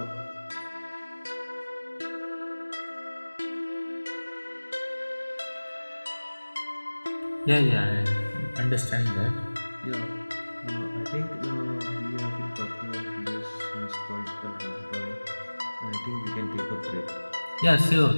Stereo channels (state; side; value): inverted; both; correlation -1.00